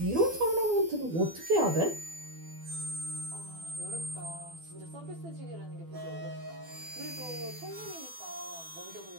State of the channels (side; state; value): left; late; 12 ms